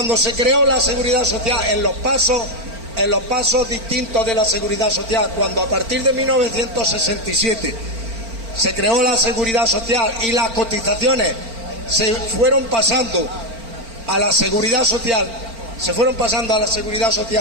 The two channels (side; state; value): left; late; 4.4 ms